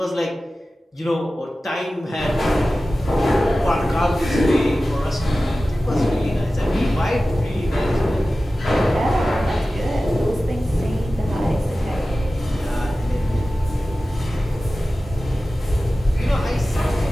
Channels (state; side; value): normal; both; correlation 0.95